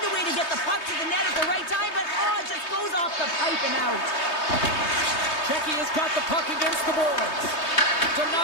a way to get the puck to the net at the right time, but it just goes off the pipe and out. Checky has got the puck against the boards.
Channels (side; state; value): right; late; 3.2 ms